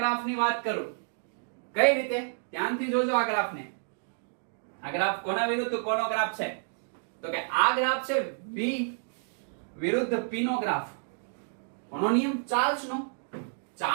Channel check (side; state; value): left; silent; digital silence